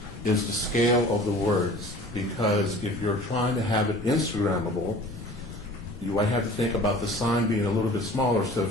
is the scale of the words. Because if you're trying to have it Instagrammable, you might have to think about the sign being a little bit smaller so it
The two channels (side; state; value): both; normal; correlation 0.44